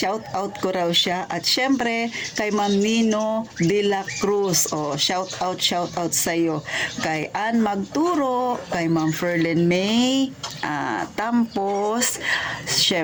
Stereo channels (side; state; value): both; identical; correlation 1.00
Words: out ko raw siya. At syempre, kay Ma'am Nino de la Cruz, shout out sa'yo. Kay Ann Magturo, kay Ma'am Ferlin May, Tampos,